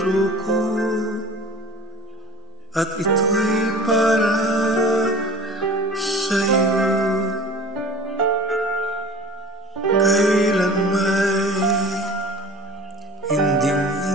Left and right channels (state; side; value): normal; both; correlation 0.40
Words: ko at ito'y para sa'yo. Kailan may